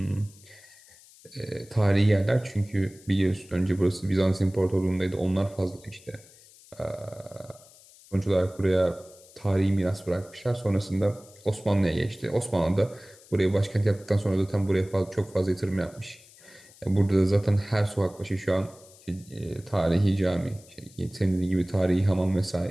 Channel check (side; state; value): left; noise; hiss, 24 dB below the sound